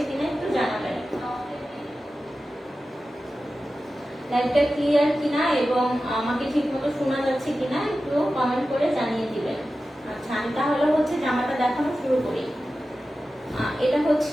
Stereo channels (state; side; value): normal; both; correlation 0.94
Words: কিনা একটু জানাবেন। লাইভটা ক্লিয়ার কিনা এবং আমাকে ঠিকমতো শোনা যাচ্ছে কিনা একটু কমেন্ট করে জানিয়ে দিবেন। আচ্ছা, আমি তাহলে হচ্ছে জামাটা দেখানো শুরু করি। এটা